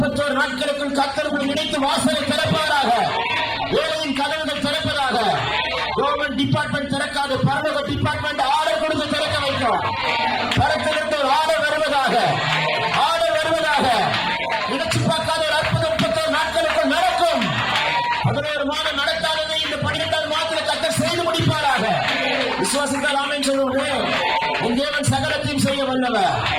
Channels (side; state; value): both; identical; correlation 1.00